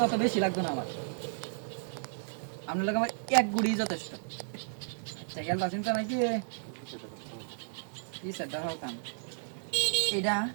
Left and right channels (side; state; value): left; silent; digital silence